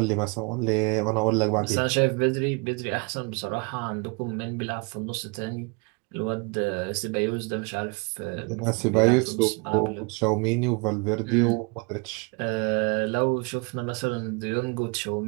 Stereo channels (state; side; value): quieter; left; 31.2 dB